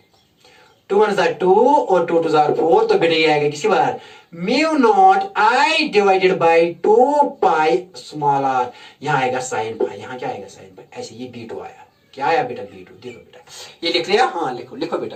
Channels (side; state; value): both; identical; correlation 1.00